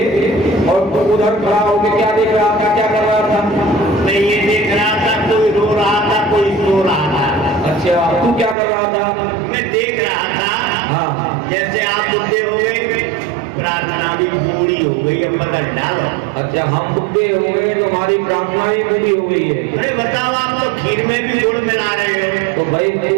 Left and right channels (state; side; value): drops out; left; at 8.6 s